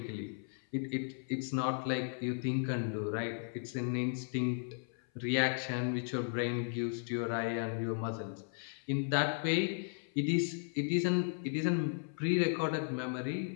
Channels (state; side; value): silent; right; 54 dB below the other